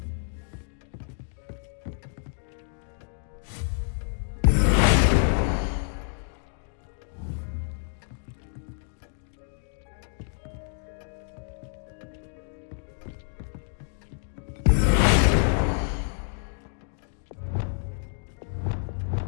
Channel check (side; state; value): right; silent; digital silence